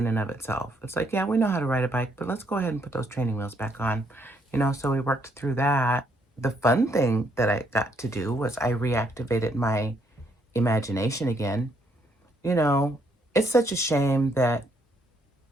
and of itself. It's like, yeah, we know how to ride a bike, but let's go ahead and put those training wheels back on. You know, so we worked through that. The fun thing that I got to do was I reactivated my imagination again. You know, it's such a shame that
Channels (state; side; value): normal; both; correlation 0.71